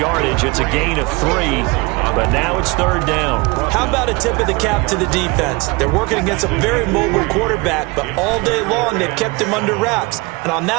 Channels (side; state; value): left; quieter; 25.6 dB